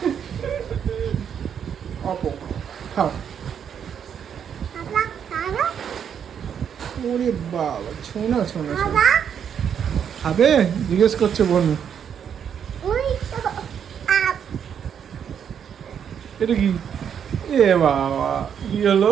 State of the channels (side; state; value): left; quieter; 8.1 dB